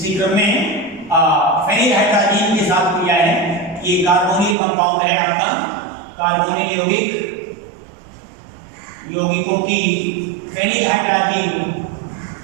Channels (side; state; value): left; drops out; at 4.5 s